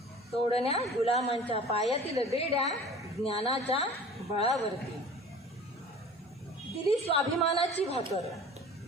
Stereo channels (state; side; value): normal; both; correlation 0.43